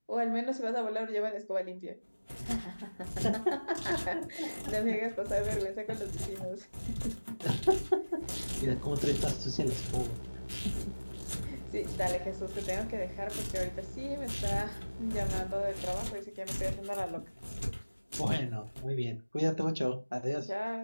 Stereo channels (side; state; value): both; inverted; correlation -1.00